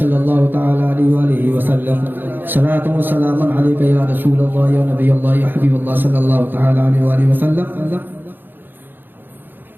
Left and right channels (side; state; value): left; late; 0.094 ms